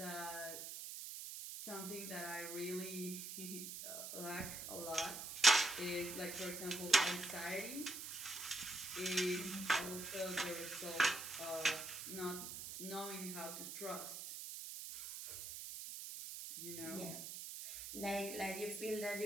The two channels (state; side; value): noise; right; hiss, 7 dB below the sound